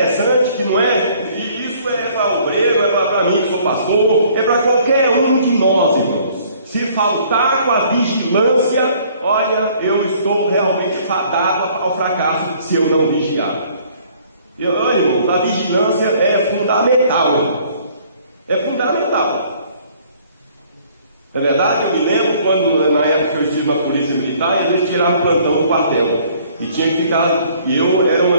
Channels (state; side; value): inverted; both; correlation -0.58